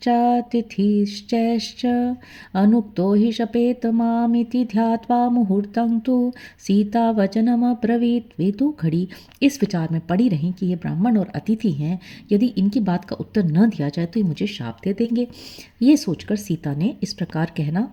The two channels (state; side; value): identical; both; correlation 1.00